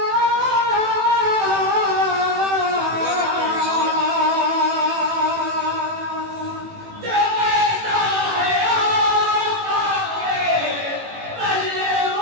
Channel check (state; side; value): late; left; 18 ms